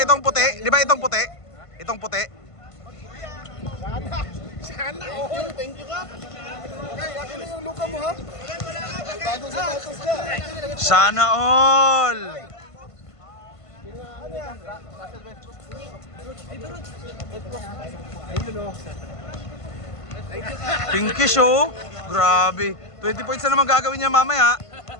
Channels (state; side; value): late; right; 1.5 ms